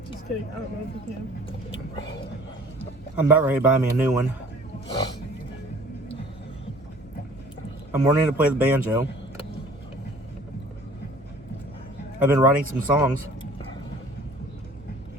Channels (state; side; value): normal; both; correlation 0.51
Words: Just kidding. I don't know if he can. I'm about ready to buy me a new one. I'm learning to play the banjo. I've been writing some songs.